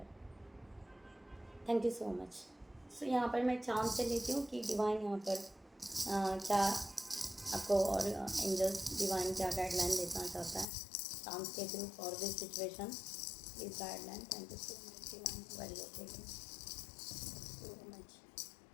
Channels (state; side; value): drops out; right; at 10.7 s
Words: Thank you so much. So यहाँ पर मैं चांद से लेती हूँ कि डिवाइन यहाँ पर क्या आपको और एंजल्स डिवाइन क्या गाइडलाइन देना चाहता है चांद के through for this situation. Please guideline. Thank you so much divine. Very okay so much.